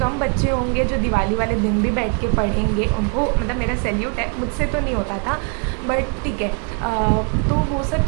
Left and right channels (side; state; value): left; quieter; 38.6 dB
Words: कम बच्चे होंगे जो दिवाली वाले दिन भी बैठ के पढ़ेंगे. उनको मेरा सैल्यूट है, मुझसे तो नहीं होता था, बट ठीक है. तो वो सब